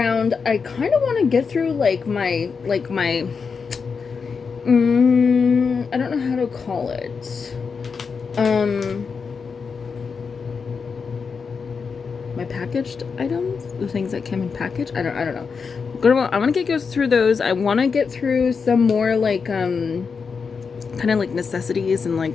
I kind of want to get through my I don't know how to call it. My packaged items, the things that came in package. I don't know. I want to get through those. I want to get through some more kind of like necessities and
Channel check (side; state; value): right; quieter; 5.5 dB